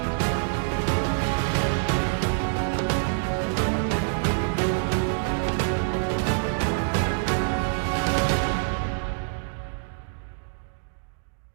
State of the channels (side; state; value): left; silent; digital silence